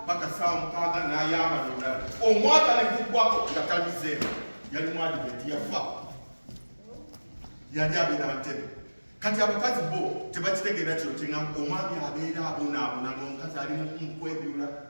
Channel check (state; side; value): inverted; both; correlation -1.00